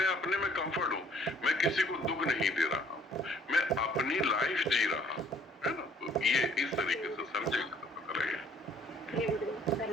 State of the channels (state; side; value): normal; both; correlation 0.59